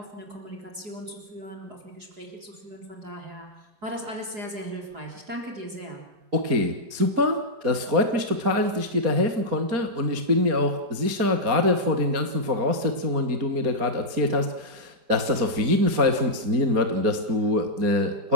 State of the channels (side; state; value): left; late; 4.3 ms